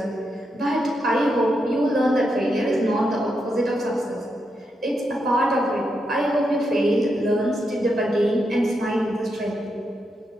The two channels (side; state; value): both; normal; correlation 0.83